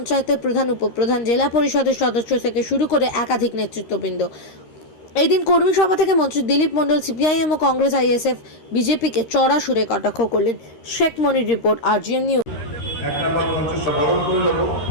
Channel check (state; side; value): late; right; 13 ms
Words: প্রধান, উপপ্রধান, জেলা পরিষদের সদস্য থেকে শুরু করে একাধিক নেতৃত্ববৃন্দ। এই দিন কর্মী সভা থেকে মন্ত্রী দিলীপ মণ্ডল সিপিআইএম ও কংগ্রেস, আইএসএফ, বিজেপিকে চড়া সুরে কটাক্ষ করলেন। শেখ মনির রিপোর্ট, আরজিএন নিউজ। এক নম্বর পঞ্চাশ বরণ করে নেব,